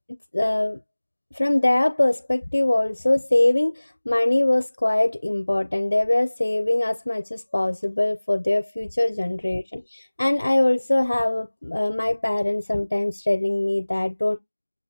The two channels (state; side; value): inverted; both; correlation -1.00